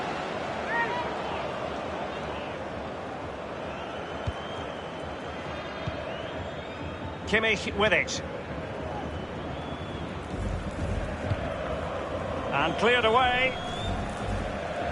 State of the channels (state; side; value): identical; both; correlation 1.00